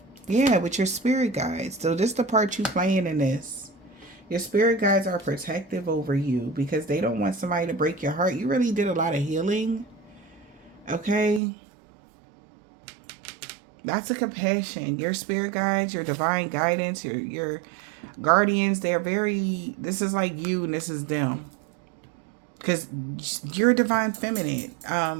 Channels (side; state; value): left; drops out; at 11.4 s